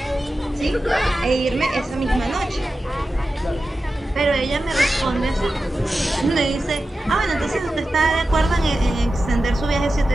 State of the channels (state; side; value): normal; both; correlation 0.93